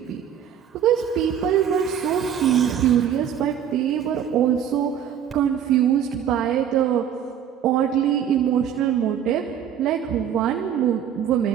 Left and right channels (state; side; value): quieter; left; 9.1 dB